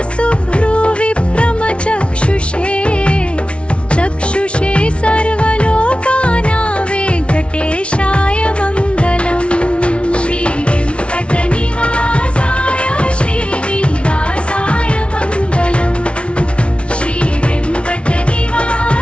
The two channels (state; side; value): late; right; 0.060 ms